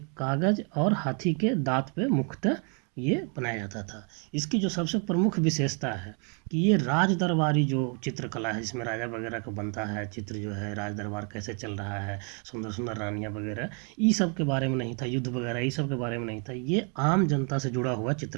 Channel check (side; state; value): left; quieter; 38.4 dB